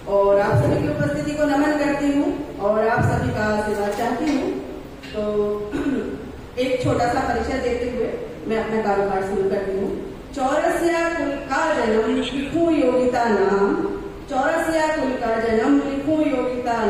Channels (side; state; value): both; identical; correlation 1.00